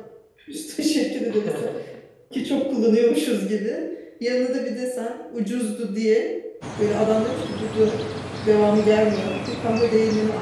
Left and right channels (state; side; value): identical; both; correlation 1.00